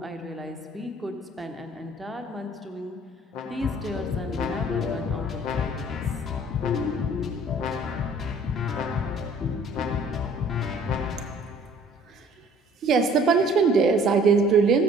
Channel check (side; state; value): both; normal; correlation 0.54